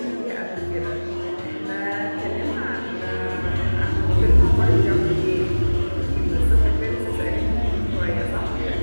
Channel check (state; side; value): inverted; both; correlation -1.00